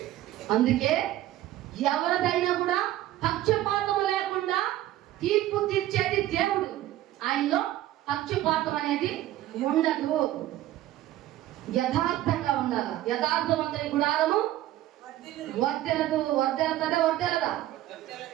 అందుకే ఎవరిదైనా కూడా పక్షపాతం లేకుండా తీర్పు తీర్చేది దేవుడు. ఆయనలో పక్షపాతం అనేది ఉండదు. యథార్థంగా ఉండాలి. యథార్థవంతుని గుడారము వర్ధెలదు. వర్ధెలతదే వర్ధెలదా?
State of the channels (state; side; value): quieter; left; 14.4 dB